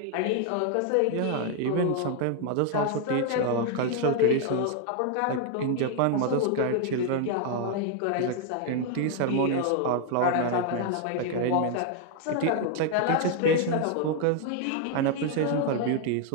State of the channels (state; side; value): different; both; correlation 0.00